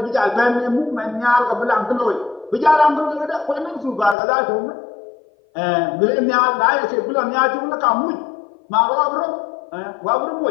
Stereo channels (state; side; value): drops out; right; at 4.2 s